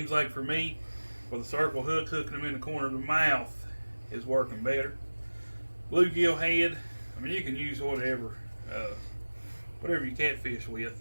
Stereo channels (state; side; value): inverted; both; correlation -1.00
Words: like for me, with a circle hook, hooking them in the corner of the mouth is working better. Bluegill head, I mean, you can use whatever you catfish with.